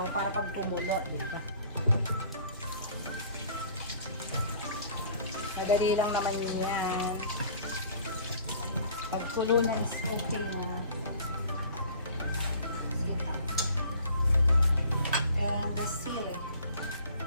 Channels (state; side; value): inverted; both; correlation -0.50